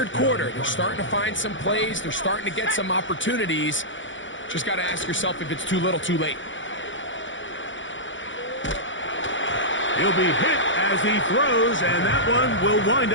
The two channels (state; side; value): late; right; 0.55 ms